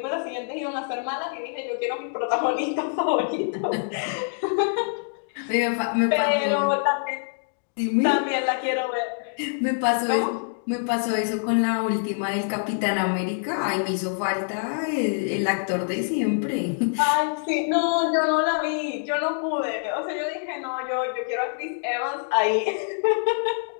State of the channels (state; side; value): silent; right; digital silence